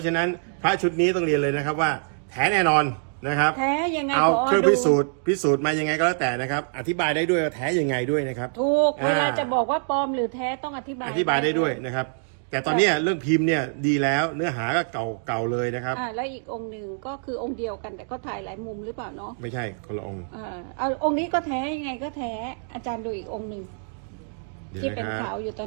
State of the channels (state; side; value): silent; left; digital silence